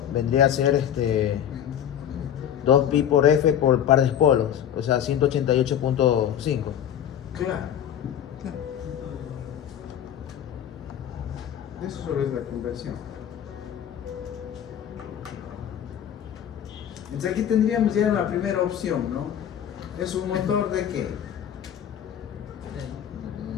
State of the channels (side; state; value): right; quieter; 9.8 dB